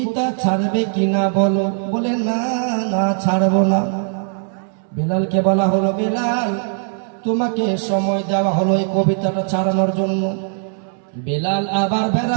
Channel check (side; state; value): left; silent; 64 dB below the other